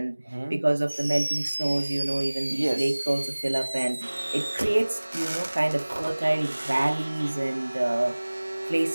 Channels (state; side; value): inverted; both; correlation -1.00